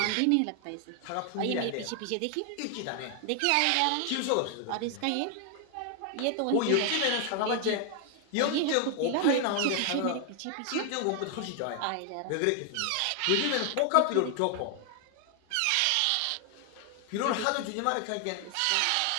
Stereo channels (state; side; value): different; both; correlation 0.00